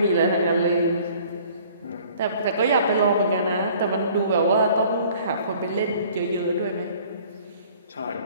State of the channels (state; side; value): inverted; both; correlation -0.53